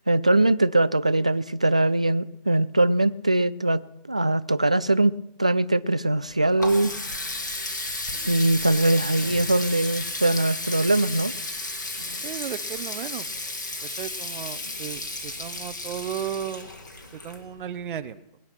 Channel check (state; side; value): inverted; both; correlation -0.85